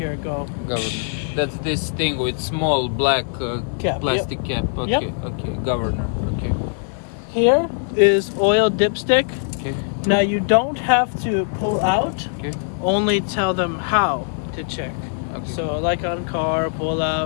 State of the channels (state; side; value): silent; right; 64 dB below the other